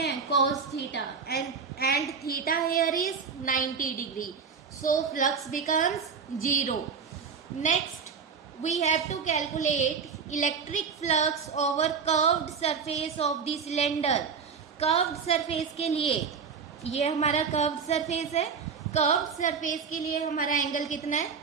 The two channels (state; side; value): quieter; left; 6.0 dB